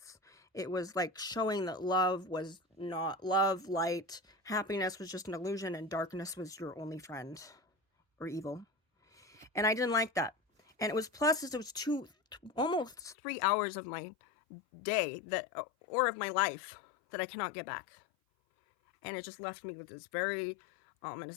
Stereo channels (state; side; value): drops out; right; at 13.2 s